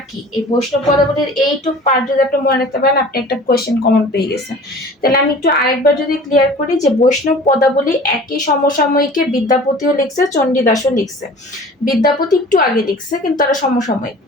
কি। এই বৈষ্ণব পদাবলীর এইটুক পার্ট যদি আপনি মনে রাখতে পারেন, আপনি একটা কোয়েশ্চেন কমন পেয়ে গেছেন। তাহলে আমি একটু আরেকবার যদি ক্লিয়ার করি, যে বৈষ্ণব পদাবলী একই সমসাময়িকে বিদ্যাপতিও লিখছে, চণ্ডীদাসও লিখছে। বিদ্যাপতি একটু আগে লিখছে, কিন্তু তারা সমসাময়িক।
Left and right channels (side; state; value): both; normal; correlation 0.43